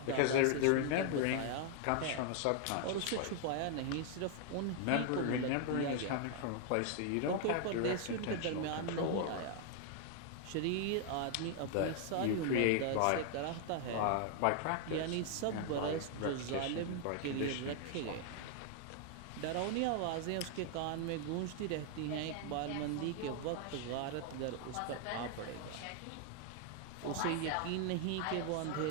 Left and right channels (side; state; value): both; different; correlation 0.00